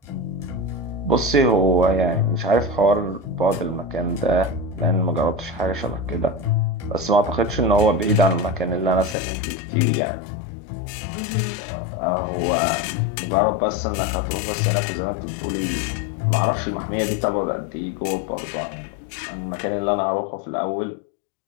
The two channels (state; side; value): drops out; right; at 9.2 s